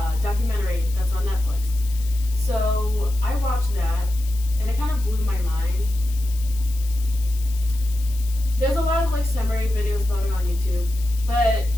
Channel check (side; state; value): left; noise; hiss, 17 dB below the sound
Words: documentary that's on Netflix. So I watched that and it kind of blew my mind. There's a lot of like summary videos about it on YouTube, but